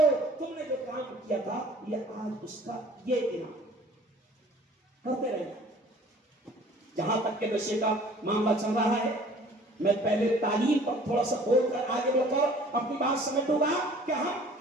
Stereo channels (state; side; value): normal; both; correlation 0.51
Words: تم نے جو کام کیا تھا یہ آج اس کا یہ انعام کرتے رہنا. جہاں تک کہ نشے کا معاملہ چل رہا ہے میں پہلے تعلیم پر تھوڑا سا بول کر آگے بڑھ کر اپنی بات سمجھوں گا کہ